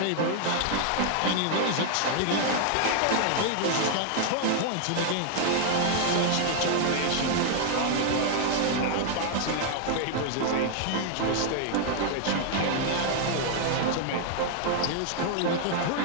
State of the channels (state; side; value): different; both; correlation 0.00